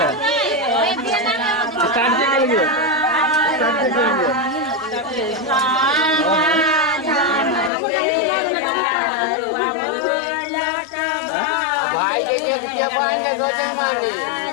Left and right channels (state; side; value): drops out; right; at 7.7 s